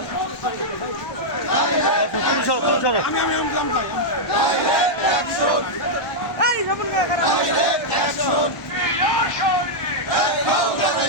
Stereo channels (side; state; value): right; late; 1.1 ms